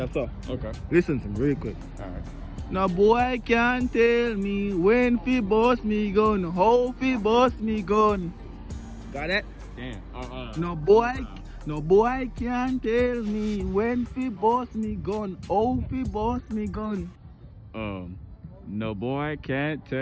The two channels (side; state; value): both; identical; correlation 1.00